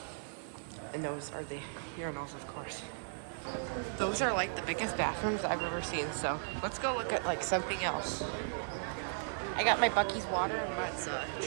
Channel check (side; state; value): left; silent; digital silence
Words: And those are the urinals, of course. Those are like the biggest bathrooms I've ever seen. So let's go look at like something else. I got my Buc-ee's water and let's